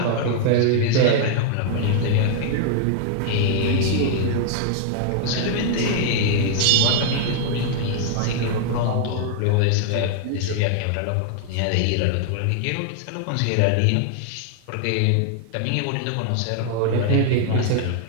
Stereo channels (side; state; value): both; different; correlation 0.00